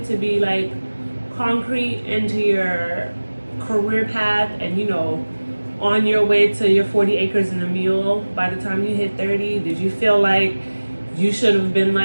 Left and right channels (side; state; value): both; inverted; correlation -1.00